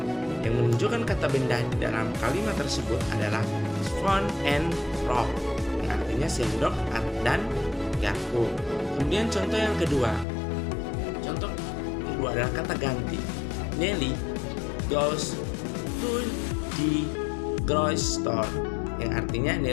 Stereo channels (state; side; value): drops out; right; at 10.2 s